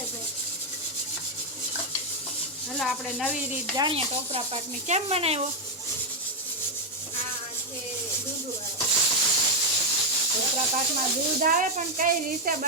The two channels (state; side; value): normal; both; correlation 0.03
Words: ભાઈ. હાલો આપણે નવી રીત જાણીએ ટોપરા પાકની. કેમ બનાવ્યો? ટોપરા પાકમાં દૂધ આવે પણ કઈ રીતે